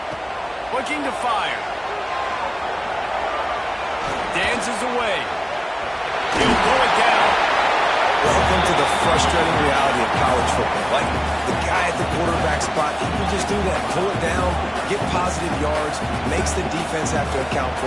Looking to fire. Dances away. He'll pull it down. Welcome to the frustrating reality of college football. Like, the guy at the quarterback spot, he can just do that. Pull it down, get positive yards, makes the defense have to account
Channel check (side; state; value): both; identical; correlation 1.00